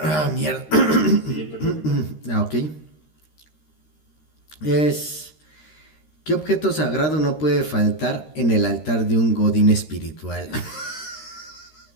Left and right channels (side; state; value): right; late; 13 ms